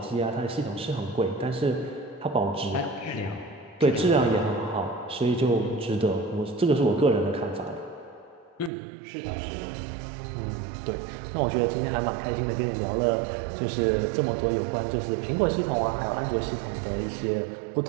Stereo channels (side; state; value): left; drops out; at 8.7 s